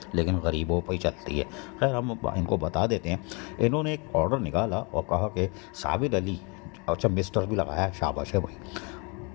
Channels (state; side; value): quieter; right; 31.7 dB